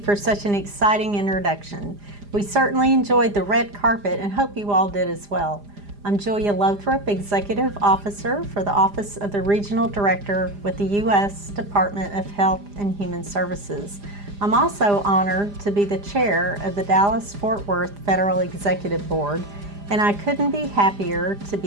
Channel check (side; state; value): left; late; 4.9 ms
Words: such an exciting introduction. We certainly enjoyed the red carpet and hope you all did as well. I'm Julia Lothrop, Executive Officer for the Office of the Regional Director with the U.S. Department of Health and Human Services. I'm also honored to be the chair of the Dallas-Fort Worth Federal Executive Board, and I couldn't be happier to